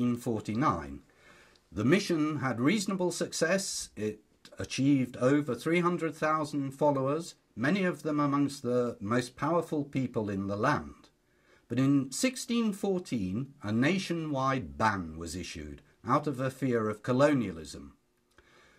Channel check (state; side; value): identical; both; correlation 1.00